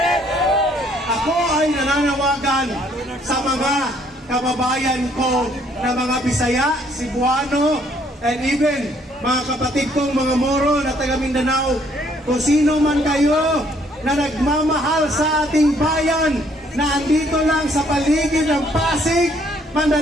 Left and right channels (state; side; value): normal; both; correlation 0.65